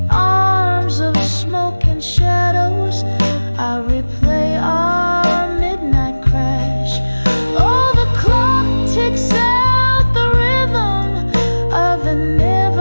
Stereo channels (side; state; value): both; inverted; correlation -1.00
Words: arms of smoke and shadows, I replay our midnight crash. Oh, the clock ticks out the rhythm of an